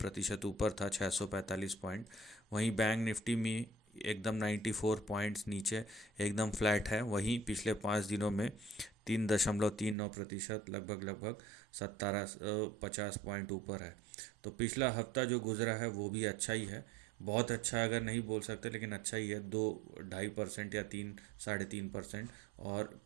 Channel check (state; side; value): drops out; left; at 10.0 s